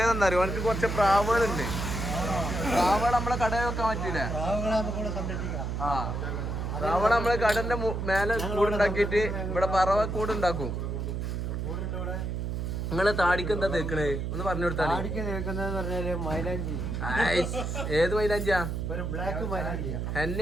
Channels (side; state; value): right; noise; hum, 2 dB below the sound